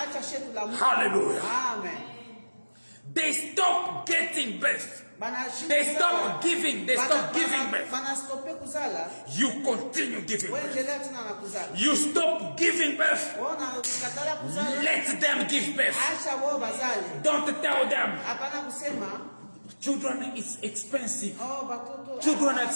Hallelujah. Amen. They stop getting birth. They stop giving. They stop giving birth. You continue giving birth. You stop giving birth. Let them give birth. Don't tell them. Children is expensive. Children are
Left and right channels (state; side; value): inverted; both; correlation -1.00